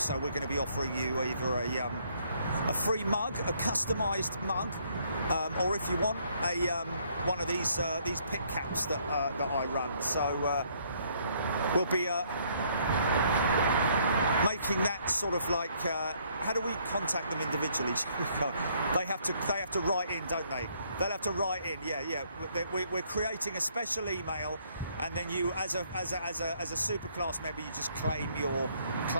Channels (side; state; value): both; inverted; correlation -0.67